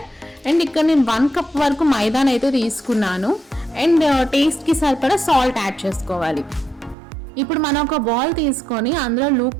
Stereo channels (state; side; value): drops out; left; at 7.0 s